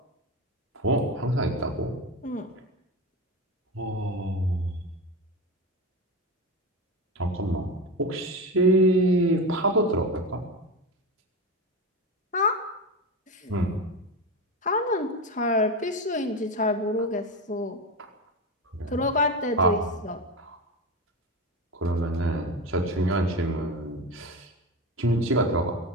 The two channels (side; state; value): both; normal; correlation 0.21